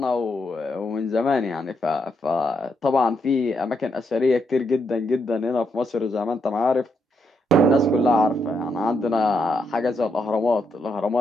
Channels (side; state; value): both; normal; correlation 0.79